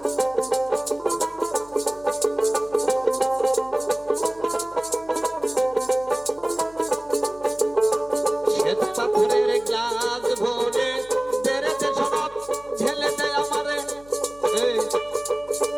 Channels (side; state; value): left; noise; hum, 24 dB below the sound